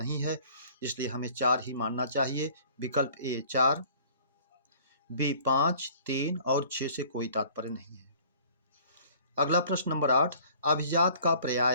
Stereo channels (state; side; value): inverted; both; correlation -0.52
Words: है, इसलिए हमें 4 ही मानना चाहिए। विकल्प ए 4, बी 5, 3 और 6 से कोई तात्पर्य नहीं है। अगला प्रश्न नंबर 8, अभिजात का